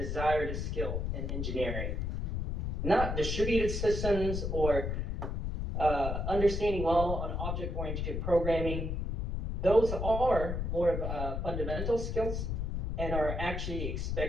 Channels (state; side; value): noise; left; rumble, 2 dB below the sound